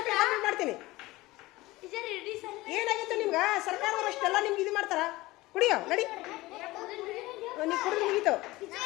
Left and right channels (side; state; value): right; quieter; 19.7 dB